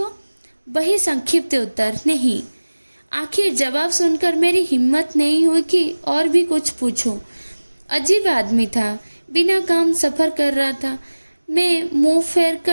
वही संक्षिप्त उत्तर, नहीं। आखिर जवाब सुनकर मेरी हिम्मत नहीं हुई कि और भी कुछ पूछूं। अजीब आदमी था, बिना काम सफ़र कर रहा था। मैं मुंह फेर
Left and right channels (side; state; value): both; inverted; correlation -1.00